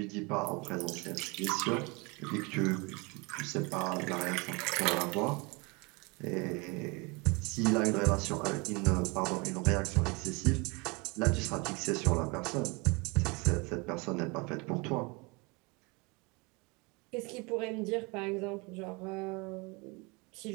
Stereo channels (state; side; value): quieter; left; 28.1 dB